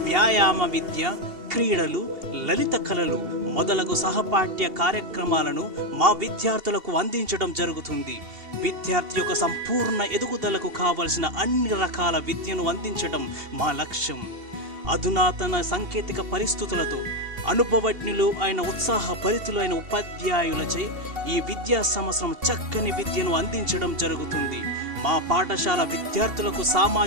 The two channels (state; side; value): late; left; 2.7 ms